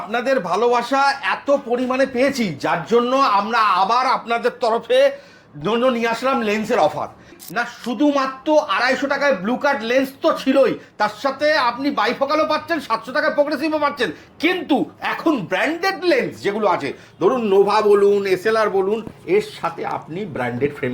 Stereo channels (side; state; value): both; identical; correlation 1.00